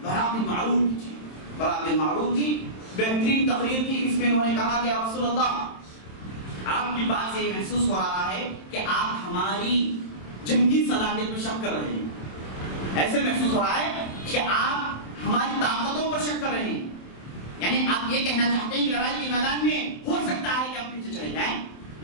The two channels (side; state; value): right; late; 27 ms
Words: برا بالمعروف کی تھی. برا بالمعروف کی بہترین تقریر کی. اس میں انہوں نے کہا کہ یا رسول اللہ, آپ کی بات سے یہ محسوس ہو رہا ہے کہ آپ ہماری جنگی صلاحیت میں شک کر رہے ہیں. ایسے محسوس ہو رہا ہے کہ آپ ہماری طاقتوں پر شک کر رہے ہیں, یعنی آپ یہ کہنا چاہتے ہیں کہ لڑائی کے میدان میں ہو سکتا ہے کہ ہم پیچھے چلے جائیں,